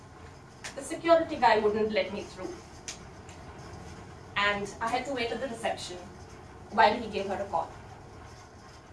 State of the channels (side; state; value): both; identical; correlation 1.00